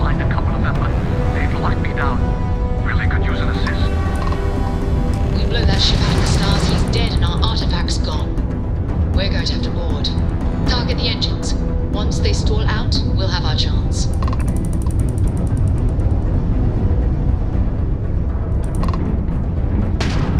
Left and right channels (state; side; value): identical; both; correlation 1.00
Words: a couple of them, but they'd lock me down. Really could use an assist. We blow that ship out of the stars, he's dead and our artifact's gone. We're going to have to board. Target the engines. Once they stall out, we'll have our chance.